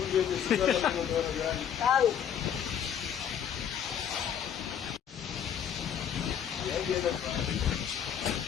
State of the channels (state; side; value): quieter; right; 8.8 dB